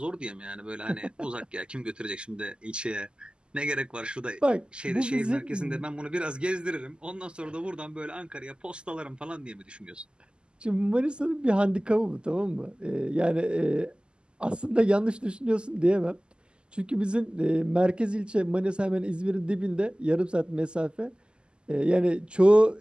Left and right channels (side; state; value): left; late; 0.049 ms